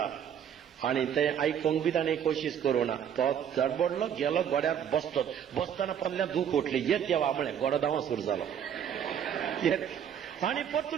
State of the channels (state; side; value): quieter; left; 8.8 dB